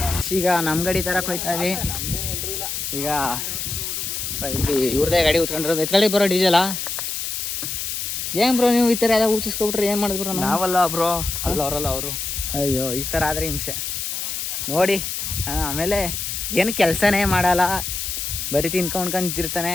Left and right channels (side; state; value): left; noise; hiss, 4 dB below the sound